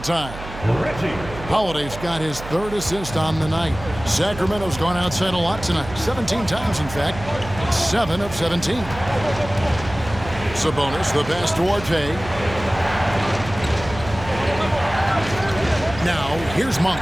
time. Holiday's got his 3rd assist on the night. Sacramento's gone outside a lot tonight. 17 times, in fact. 7 of 17. Sabonis, the pass to Duarte. Now, here's Monk.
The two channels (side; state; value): right; noise; hum, 12 dB below the sound